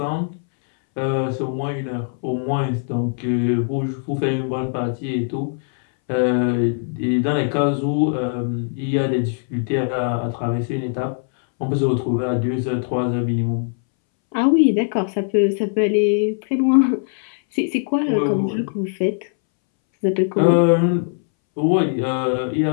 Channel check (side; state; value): right; silent; 64 dB below the other